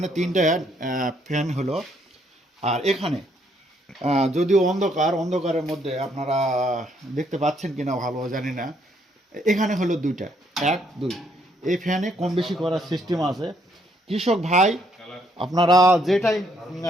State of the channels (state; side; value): normal; both; correlation 0.70